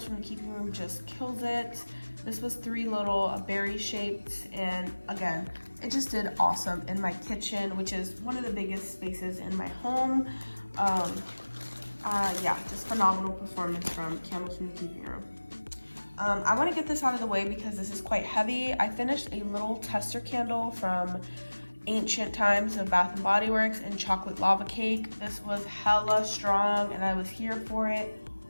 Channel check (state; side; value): inverted; both; correlation -1.00